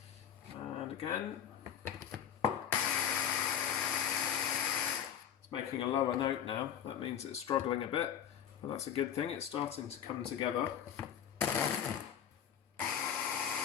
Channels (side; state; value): right; quieter; 9.2 dB